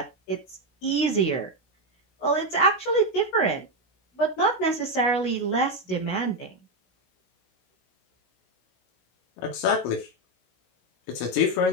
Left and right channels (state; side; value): late; right; 16 ms